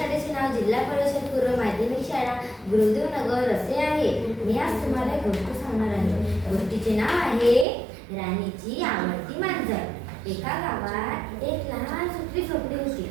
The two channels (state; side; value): drops out; left; at 7.7 s